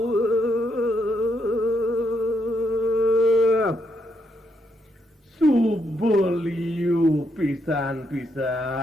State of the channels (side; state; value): both; normal; correlation 0.77